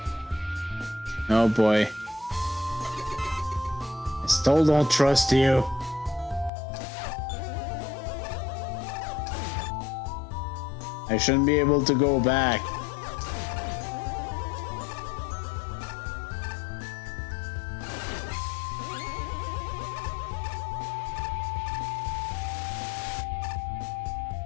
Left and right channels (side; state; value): right; drops out; at 6.5 s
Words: Oh boy. I still don't trust you. I shouldn't be able to go back.